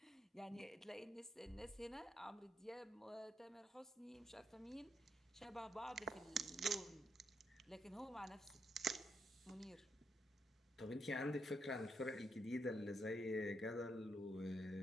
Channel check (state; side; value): normal; both; correlation 0.79